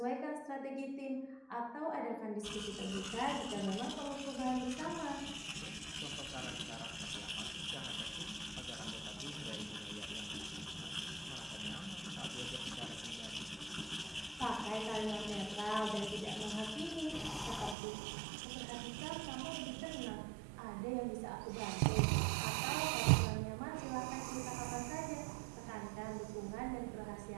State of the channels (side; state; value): left; drops out; at 17.8 s